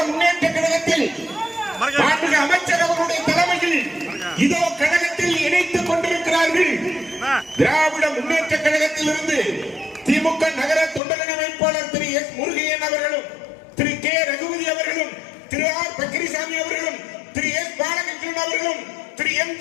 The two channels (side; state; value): right; drops out; at 11.0 s